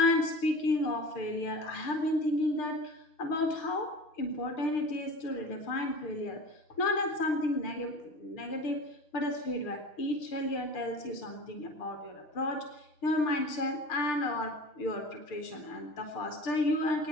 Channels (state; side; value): late; right; 6.7 ms